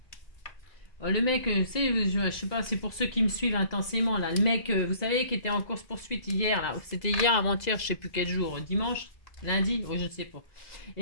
Le mec, je sais pas, c'est pour ceux qui me suivent intensément, là. Le mec, vous savez, qui était en course-poursuite hier, là. C'était hier, avant-hier, je sais plus quel jour. Dimanche? Lundi? Oh, je ne sais pas.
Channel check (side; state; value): right; late; 2.0 ms